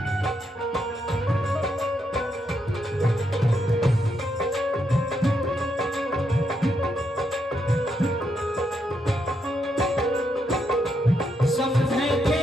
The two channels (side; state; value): both; normal; correlation 0.80